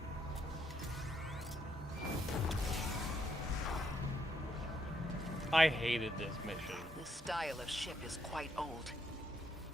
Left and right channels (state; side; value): normal; both; correlation 0.76